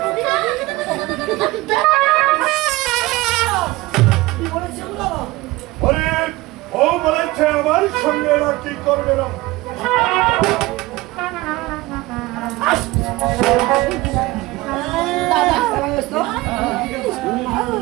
ও বলেছে আমার সঙ্গে এরা কি করবে না।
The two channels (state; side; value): quieter; left; 20.0 dB